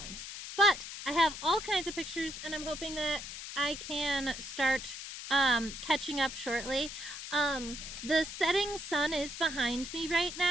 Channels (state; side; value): noise; left; hiss, 9 dB below the sound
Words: But I have all kinds of pictures, and I'm hoping that I can start catching up shortly. The setting sun is behind me right